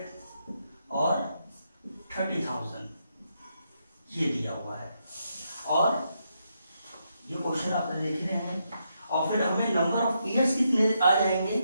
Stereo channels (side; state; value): both; inverted; correlation -0.80